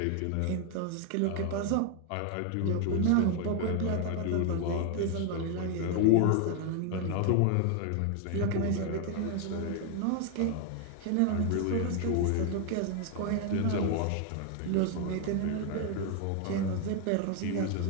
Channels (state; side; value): different; both; correlation 0.00